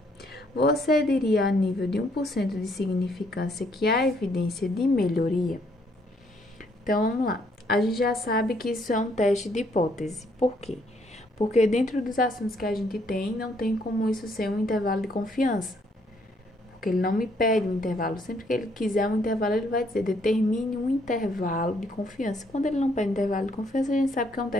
Você diria a nível de 1% de significância que há evidência de melhoria? Então, vamos lá. A gente já sabe que isso é um teste de hipótese. Por quê? Porque dentro dos assuntos que a gente tem, não tem como isso ser um intervalo de confiança. Porque ele não me pede um intervalo. Sempre que ele quiser um intervalo, ele vai dizer, determine um intervalo de confiança. Quando ele não pede intervalo de confiança, a gente sabe que é um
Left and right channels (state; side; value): normal; both; correlation 0.69